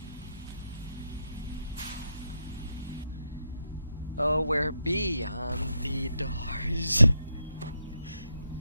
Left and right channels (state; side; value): inverted; both; correlation -0.82